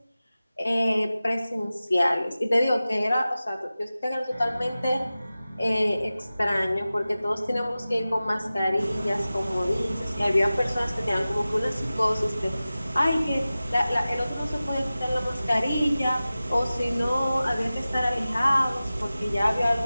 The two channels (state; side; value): inverted; both; correlation -0.96